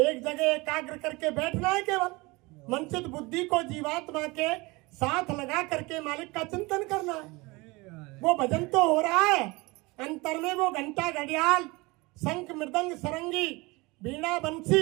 जगह एकाग्र करके बैठना है। केवल मन से बुद्धि को जीवात्मा के साथ लगा करके मालिक का चिंतन करना है। वो भजन तो हो रहा है, अंतर में वो घंटा घड़ियाल शंख मृदंग सरंगी बीड़ा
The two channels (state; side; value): quieter; left; 24.0 dB